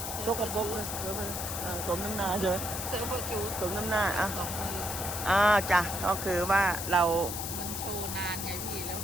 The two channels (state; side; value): noise; left; hiss, 5 dB below the sound